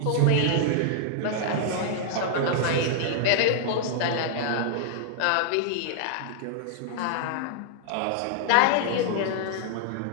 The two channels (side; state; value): both; different; correlation -0.01